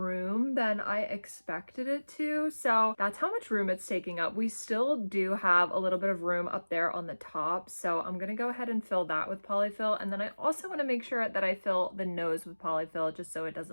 than I expected it to. So that's how much room it's taking up. We still do have a little bit of room up there on the top. So I'm gonna go ahead and fill that with polyfill. And then I also wanna make sure that I fill the nose with polyfill just so it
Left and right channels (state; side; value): inverted; both; correlation -1.00